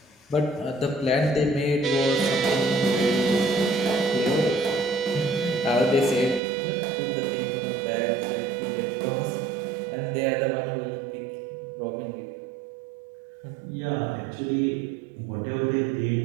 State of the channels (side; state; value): left; drops out; at 6.4 s